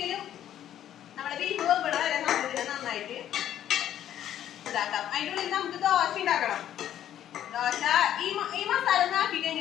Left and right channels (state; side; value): quieter; right; 11.1 dB